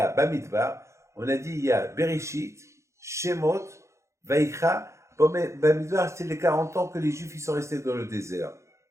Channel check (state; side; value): late; left; 0.14 ms